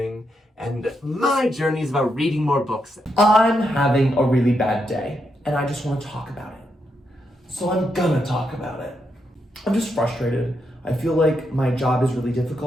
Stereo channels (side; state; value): both; normal; correlation 0.82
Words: and my journey is about reading more books. I'm having a really bad day, and I just want to talk about it. So I'm gonna talk about it. I'm just frustrated. I feel like my job is really